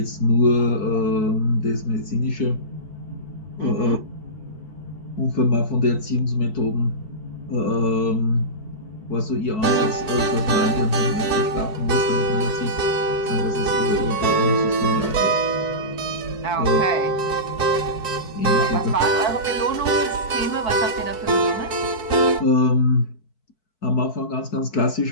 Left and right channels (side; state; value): right; late; 4.6 ms